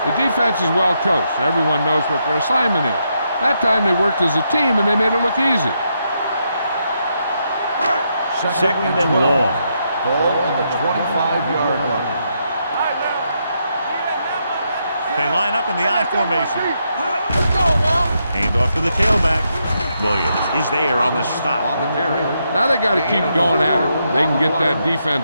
The defense is well coached. Everyone knows what their assignment is. That time they worked as a team and they made it look easy. Second and long. Ball on the 25-yard line. They line up in the I formation. Let's go now. Hand off to the tailback. Williams is there on the stop. On the carry. Now they got to keep going at it. They can get that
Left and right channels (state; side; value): inverted; both; correlation -0.80